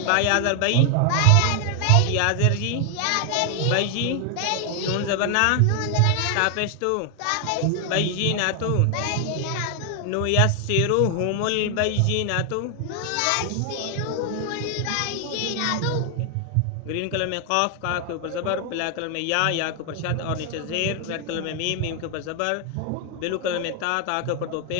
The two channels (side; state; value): both; different; correlation 0.00